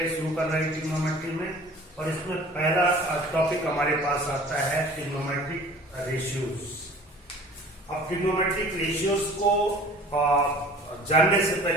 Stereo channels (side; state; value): both; normal; correlation 0.46